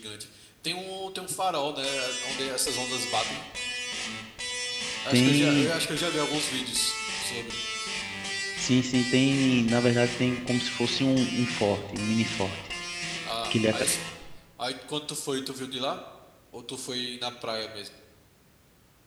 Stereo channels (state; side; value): identical; both; correlation 1.00